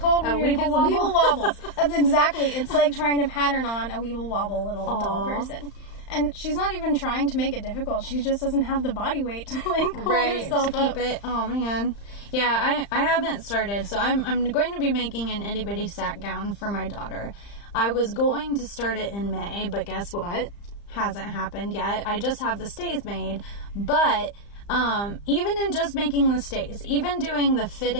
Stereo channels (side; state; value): right; late; 35 ms